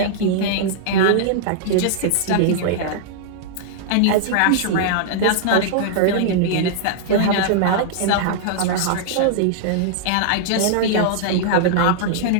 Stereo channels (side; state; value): both; different; correlation -0.01